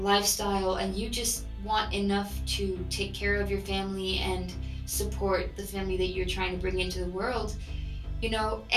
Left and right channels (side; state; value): both; identical; correlation 1.00